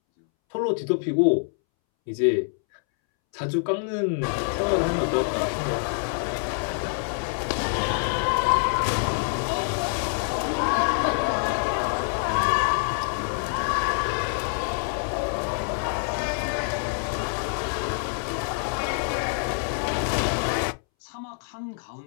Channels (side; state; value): right; silent; 61 dB below the other